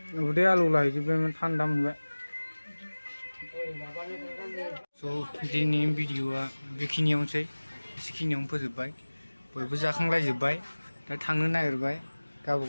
उदै आलौ लाहैजोबबायमोन थान्दा मोनबाय स' दिनैनि भिडिअ'आ बेखिनियावनोसै एसेखिनियावनो फोजोबबाय बयबो जाखांलायजोब्बाय दा थांनो नागिरबाय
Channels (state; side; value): inverted; both; correlation -1.00